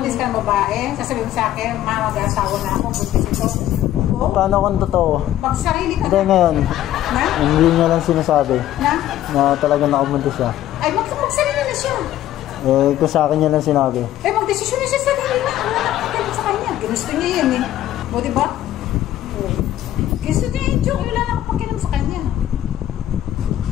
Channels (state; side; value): quieter; right; 12.9 dB